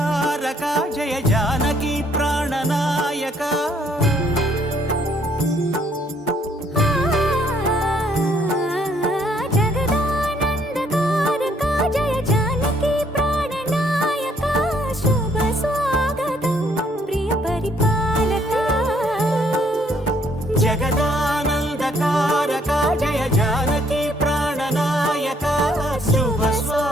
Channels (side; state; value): both; normal; correlation 0.66